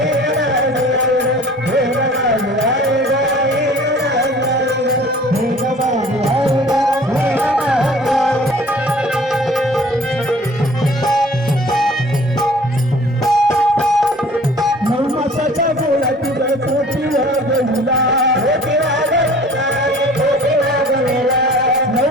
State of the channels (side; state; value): both; normal; correlation 0.49